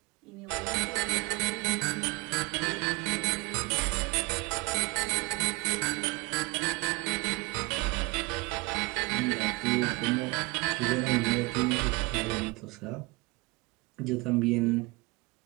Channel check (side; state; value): left; quieter; 25.3 dB